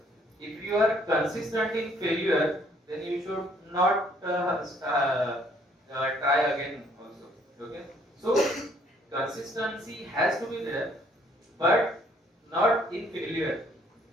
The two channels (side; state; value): both; normal; correlation 0.64